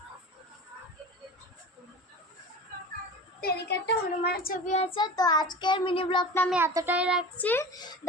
এদিকে একটা হনুমানের ছবি আছে। তো আজকের মিনি ব্লগটা আমি এতটাই রাখছি।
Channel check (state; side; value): normal; both; correlation 0.34